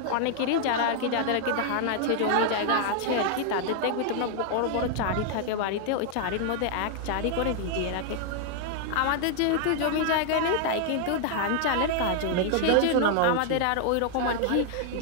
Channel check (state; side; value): different; both; correlation 0.00